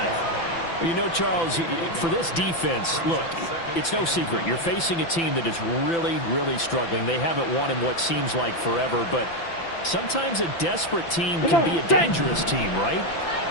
You know, Charles, for this defense, look, it's no secret. You're facing a team that is really, really struggling. They haven't won in what seems like forever, but sometimes a desperate team can be a dangerous team, right?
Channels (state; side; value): late; right; 5.9 ms